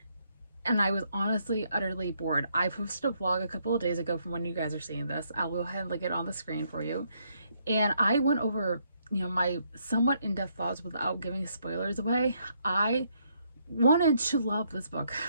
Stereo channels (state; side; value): inverted; both; correlation -0.73